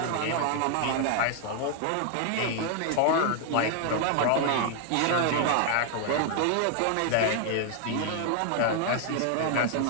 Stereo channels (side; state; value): both; different; correlation 0.00